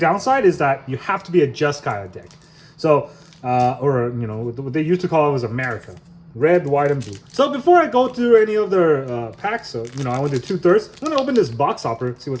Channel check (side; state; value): both; identical; correlation 1.00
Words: is that you have to be a Jeskai deck. So, or you know, what they used to call it was America. Red, white, and blue. So before I go through any of their packs, so you know, I went to 2/3. I'm gonna open this box hopper, see